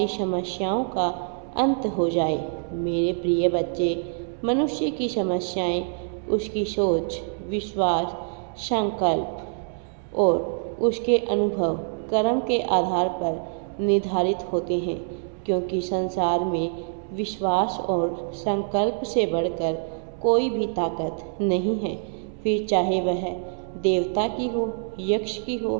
समस्याओं का अंत हो जाए। मेरे प्रिय बच्चे, मनुष्य की समस्याएं उसकी सोच, विश्वास, संकल्प और उसके अनुभव कर्म के आधार पर निर्धारित होते हैं, क्योंकि संसार में विश्वास और संकल्प से बढ़कर कोई भी ताकत नहीं है। फिर चाहे वह देवता की हो, यक्ष की हो,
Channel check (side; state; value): left; silent; 62 dB below the other